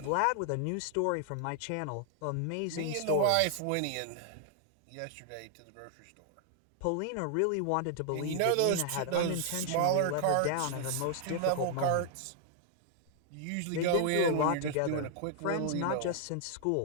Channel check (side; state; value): both; different; correlation -0.01